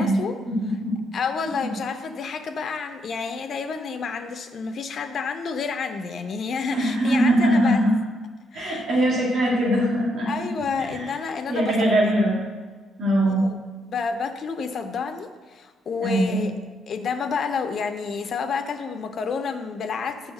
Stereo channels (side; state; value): both; normal; correlation 0.76